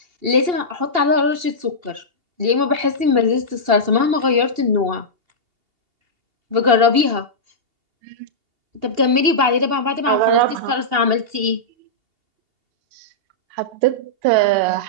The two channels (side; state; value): left; late; 2.8 ms